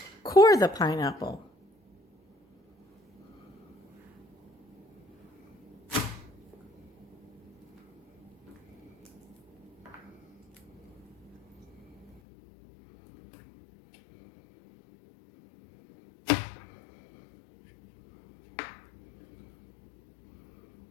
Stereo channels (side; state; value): right; drops out; at 12.2 s